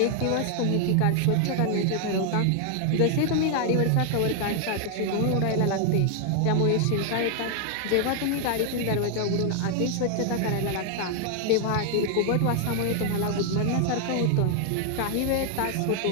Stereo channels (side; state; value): both; different; correlation 0.00